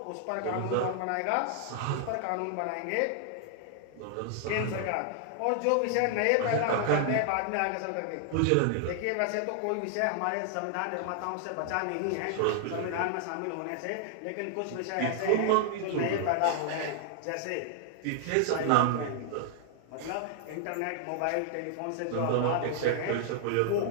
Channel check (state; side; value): different; both; correlation 0.00